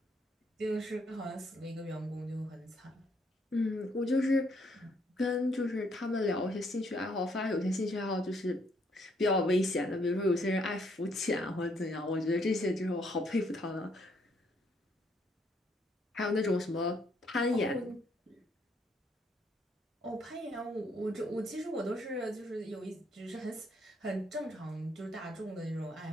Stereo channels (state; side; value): normal; both; correlation 0.70